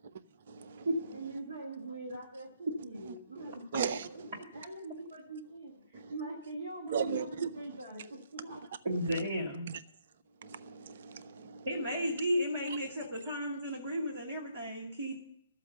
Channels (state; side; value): inverted; both; correlation -0.71